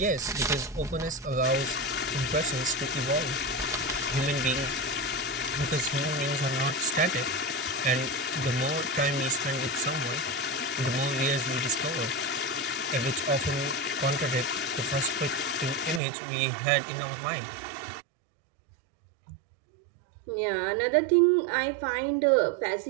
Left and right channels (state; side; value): drops out; left; at 16.0 s